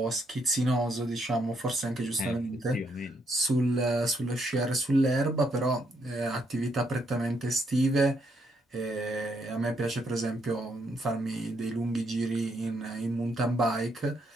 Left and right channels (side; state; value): both; normal; correlation 0.75